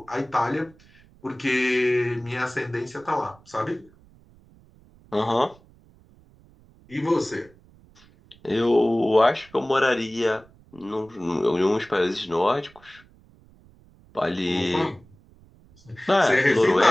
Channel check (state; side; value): noise; right; rumble, 27 dB below the sound